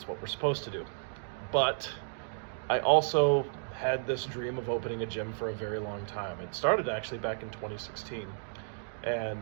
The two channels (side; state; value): left; silent; digital silence